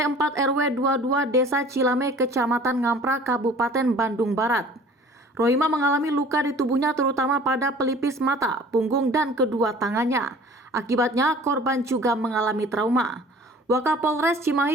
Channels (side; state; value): both; normal; correlation 0.47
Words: 4 RW 22 Desa Cilame, Kecamatan Ngampra, Kabupaten Bandung Barat. Rohima mengalami luka di tubuhnya terutama pada pelipis mata, punggung, dan kedua tangannya. Akibatnya korban juga mengalami trauma. Wakapolres